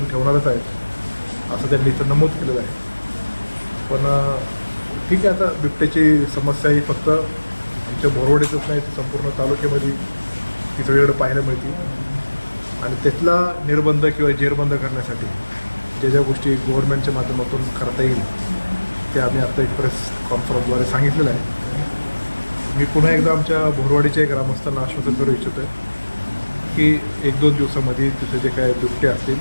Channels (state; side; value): inverted; both; correlation -1.00